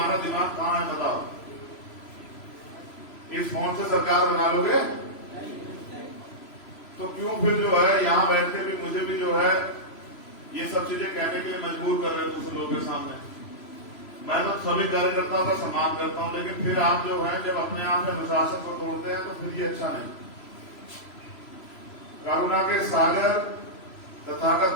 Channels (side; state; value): right; late; 3.0 ms